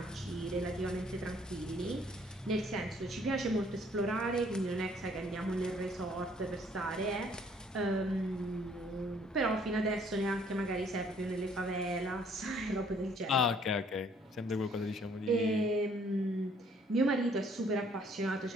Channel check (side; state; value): both; normal; correlation 0.62